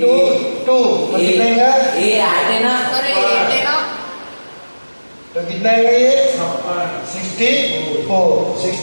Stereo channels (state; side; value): inverted; both; correlation -1.00